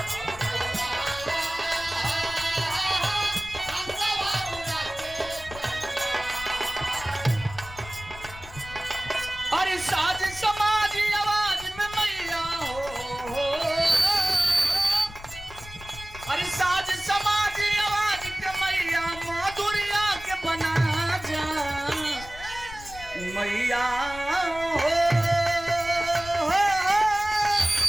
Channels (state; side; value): noise; left; rumble, 15 dB below the sound